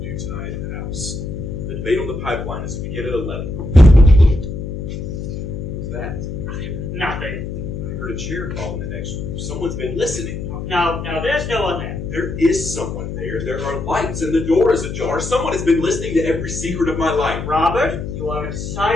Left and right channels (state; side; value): noise; left; hum, 6 dB below the sound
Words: do tonight at the house. The debate on the pipeline is to begin at 11. Who's that? Nothing. I heard a chair call in the next room. Someone's been listening. No, there's no one there. There is someone there. There are lights and the door is ajar. Someone has been listening to every secret of my life. Robert, you are